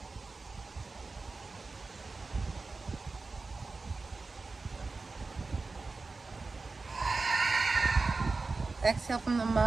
Exhale from the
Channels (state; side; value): quieter; left; 3.9 dB